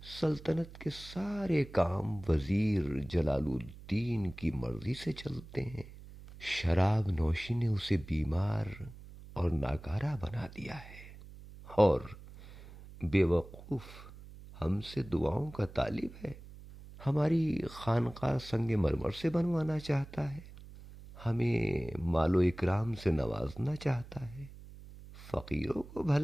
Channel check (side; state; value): right; noise; hum, 17 dB below the sound